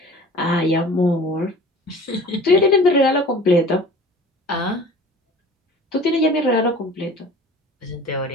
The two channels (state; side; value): normal; both; correlation 0.43